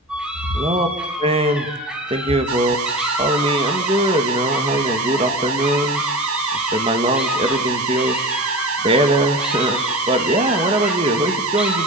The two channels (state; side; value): normal; both; correlation 0.30